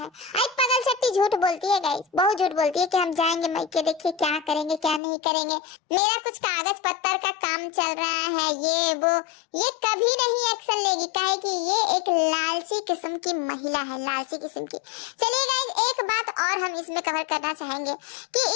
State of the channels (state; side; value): drops out; right; at 5.0 s